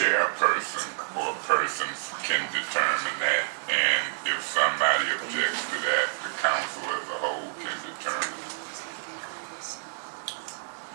or persons can determine that, and if somebody objects to that, the council as a whole can determine it.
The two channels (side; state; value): left; silent; digital silence